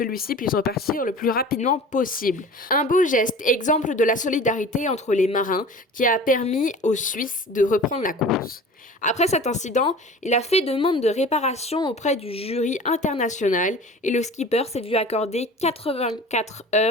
puisse repartir le plus rapidement possible. Un beau geste, exemple de la solidarité entre les marins, qui a permis aux Suisses de reprendre la course. Après cet incident, il a fait demande de réparation auprès du jury international et le skipper s'est vu accorder 84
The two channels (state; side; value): normal; both; correlation 0.40